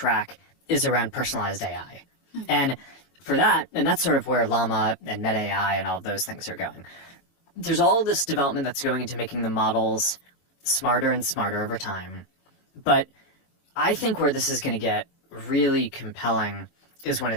is around personalized AI. And for that, and that's sort of where Llama and Meta AI and all of those things are going. There's all this development that's going into making the models smarter and smarter over time. But I think where this is going to get really compelling is when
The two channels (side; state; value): right; late; 22 ms